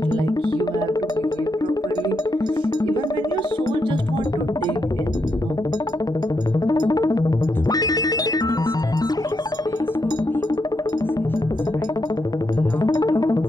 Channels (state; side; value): normal; both; correlation 0.81